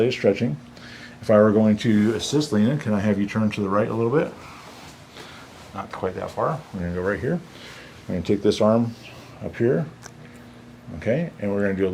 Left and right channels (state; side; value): identical; both; correlation 1.00